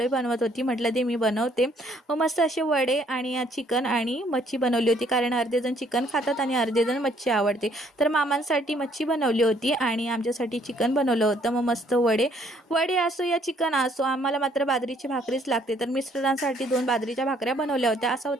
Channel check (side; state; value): both; normal; correlation 0.64